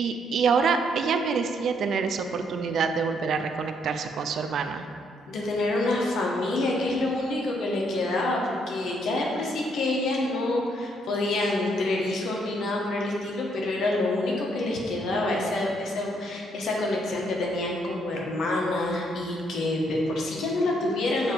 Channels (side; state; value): both; normal; correlation 0.71